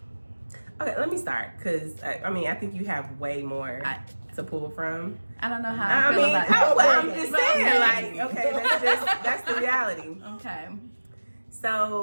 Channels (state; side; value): inverted; both; correlation -1.00